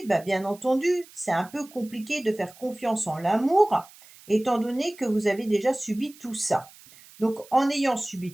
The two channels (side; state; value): right; noise; hiss, 23 dB below the sound